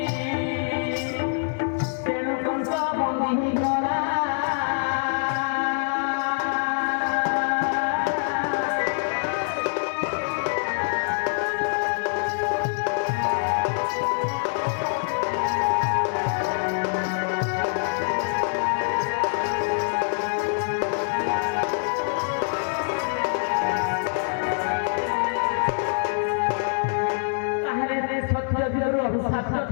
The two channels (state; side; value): silent; right; digital silence